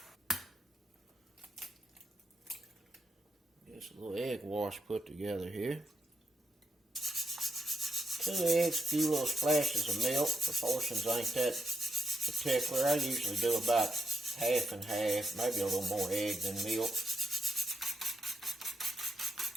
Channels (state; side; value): normal; both; correlation 0.82